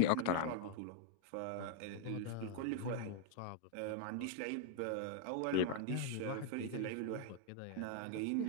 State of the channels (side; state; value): both; different; correlation 0.00